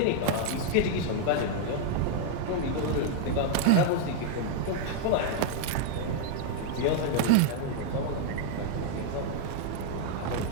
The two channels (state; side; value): different; both; correlation 0.00